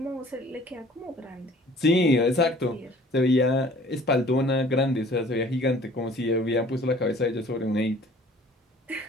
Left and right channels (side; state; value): both; normal; correlation 0.51